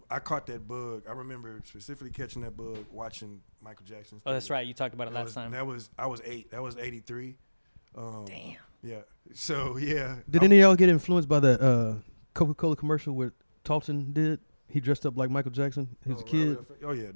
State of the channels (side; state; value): both; inverted; correlation -1.00